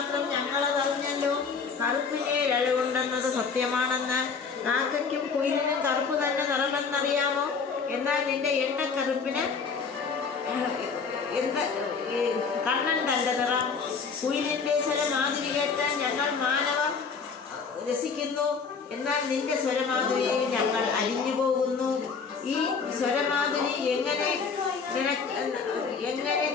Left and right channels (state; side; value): quieter; right; 5.4 dB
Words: ഞങ്ങളതറിഞ്ഞല്ലോ. കറുപ്പിനെ അഴകുണ്ടെന്നത് സത്യമാണെന്ന്. കാക്കയ്ക്കും കുയിലിനും കറുപ്പ് തന്നെ നിറമെന്നറിയാമോ? എന്നാൽ നിന്റെ എണ്ണക്കറുപ്പിന് എന്ത് കണ്ണണ്ടല്ല നിറം. കുയിലിൻ്റെ സ്വരമാതിരി കേട്ടാൽ ഞങ്ങൾ മാനവർ രസിക്കുന്നു. എന്നാൽ നിന്റെ സ്വരമാതിരിയിൽ ഞങ്ങൾ അലിഞ്ഞു പോകുന്നു. ഈ സ്വരമാതിരി എങ്ങനെ